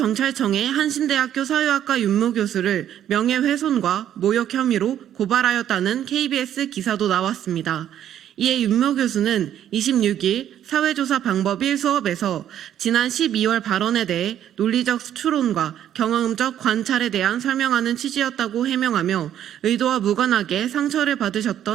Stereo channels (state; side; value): quieter; left; 10.7 dB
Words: 한신대학교 사회학과 윤모 교수를 명예훼손과 모욕 혐의로 고발하였다는 KBS 기사도 나왔습니다. 이에 윤모 교수는 26일 사회조사 방법 1 수업에서 지난 12월 발언에 대해 논리적 추론과 경험적 관찰에 대한 설명하는 취지였다고 해명하며 의도와 무관하게 상처를